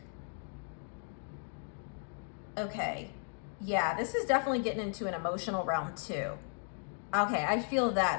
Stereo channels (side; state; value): right; silent; 54 dB below the other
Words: okay, yeah, this is definitely getting into an emotional realm too. Okay, I feel